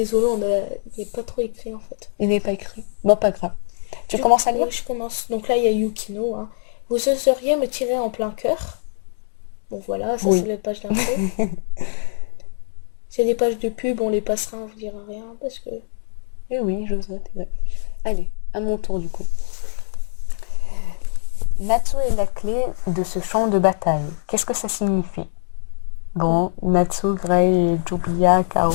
il n'est pas trop écrit en fait. Il n'est pas écrit. Bon, pas grave. Tu commences à lire? Oui, je commence. Donc là, il y a Yukino, hein. Vous oseriez me tirer en plein cœur? Bon voilà, ça Oui. c'est la page d'intro. C'est les pages de pub, on les passera, on vous dira rien parce que... Eh oui, j'oserais. Allez, à mon tour du coup. Natsu est la clé de ce champ de bataille. Qu'est-ce que ça signifie? Bon, Natsu, Grey et Julia KO.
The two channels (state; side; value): silent; right; 64 dB below the other